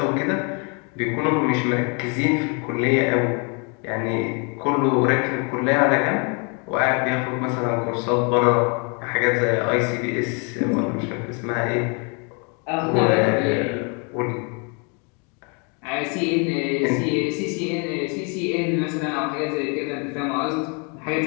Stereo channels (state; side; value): quieter; right; 35.1 dB